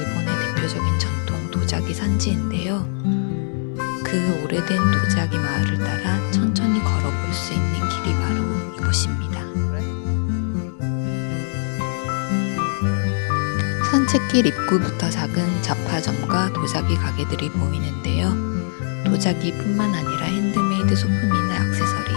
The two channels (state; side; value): silent; right; digital silence